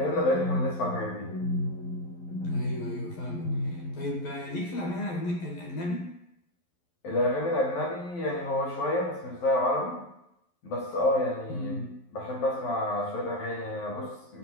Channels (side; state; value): right; late; 11 ms